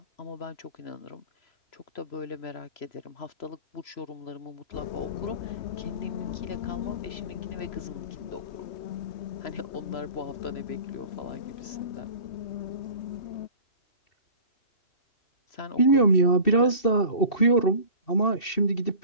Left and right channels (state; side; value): late; right; 2.7 ms